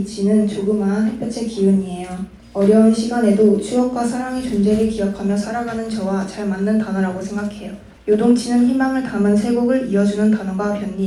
조그마한 햇볕의 기운이에요. 어려운 시간에도 추억과 사랑의 존재를 기억하며 살아가는 저와 잘 맞는 단어라고 생각해요. 요동치는 희망을 담은 세 곡을 이어주는 단어가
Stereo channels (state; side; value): identical; both; correlation 1.00